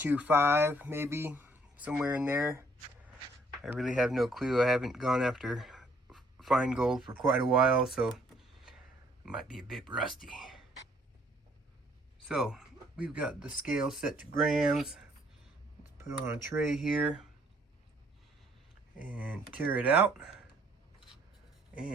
maybe, somewhere in there. I really have no clue. I haven't gone after fine gold for quite a while, so it might be a bit rusty. So we've got the scale set to grams. Let's put it on a tray here and tear it out.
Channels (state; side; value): normal; both; correlation 0.64